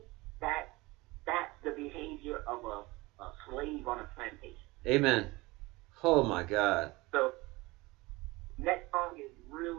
that's the behavior of a slave on a plantation. Amen. Oh my God. So next song is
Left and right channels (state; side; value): quieter; left; 22.2 dB